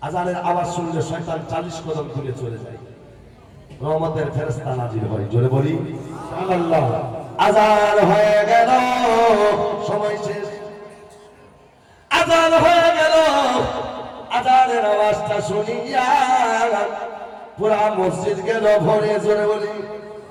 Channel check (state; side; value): identical; both; correlation 1.00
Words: আজানের আওয়াজ শুনলে শয়তান 40 কদম দূরে চলে যায়, রহমতের ফেরেশতা নাজিল হয়। জোরে বলি সুবহানাল্লাহ। আজান হয়ে গেল, সময় শেষ। আজান হয়ে গেল, আজানের আওয়াজটা শুনিয়া পুরা মসজিদ গেল ভরে। জোরে বলি